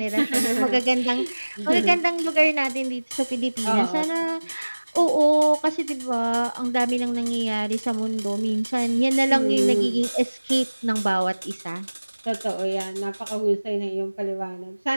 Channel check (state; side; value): inverted; both; correlation -1.00